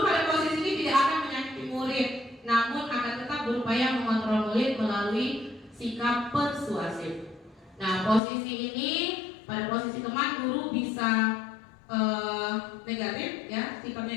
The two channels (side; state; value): right; drops out; at 8.2 s